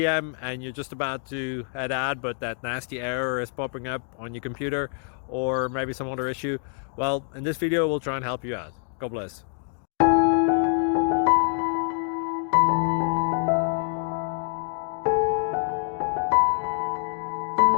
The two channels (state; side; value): silent; right; 56 dB below the other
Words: and you're just about to head out, but that nasty error is popping up on your computer, or maybe some other issue. Well, in this video we'll try and help you out. God bless.